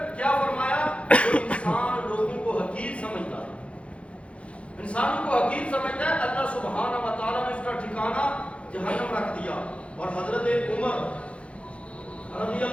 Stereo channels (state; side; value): late; right; 0.061 ms